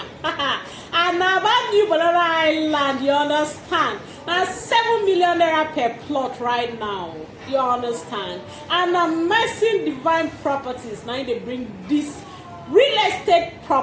And now about new Banana Highland, you understand? Now 7 million naira per plot right now. You understand? And Amazing Divine Properties now they bring this real estate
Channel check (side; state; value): both; identical; correlation 1.00